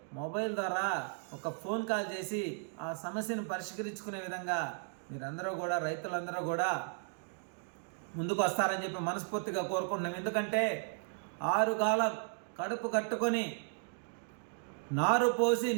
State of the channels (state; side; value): silent; left; 54 dB below the other